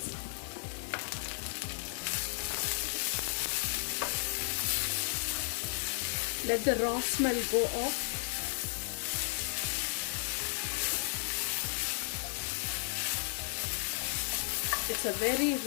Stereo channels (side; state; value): right; silent; digital silence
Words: Let the raw smell go off. It's a very